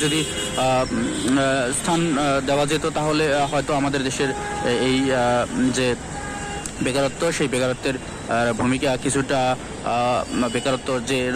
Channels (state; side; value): identical; both; correlation 1.00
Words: যদি স্থান দেওয়া যেত, তাহলে হয়তো আমাদের দেশের এই যে বেকারত্ব, সেই বেকারত্বের ভূমিকা কিছুটা, বেকারত্ব যে